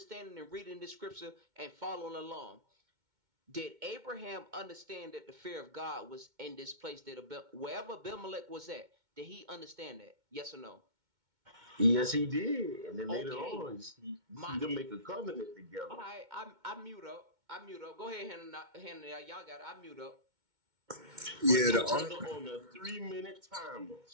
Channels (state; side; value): late; left; 2.2 ms